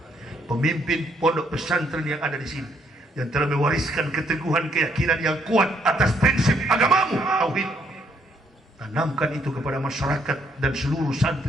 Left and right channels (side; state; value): both; normal; correlation 0.70